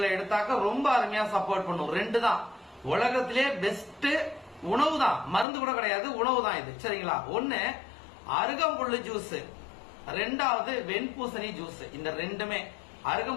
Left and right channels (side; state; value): right; drops out; at 5.5 s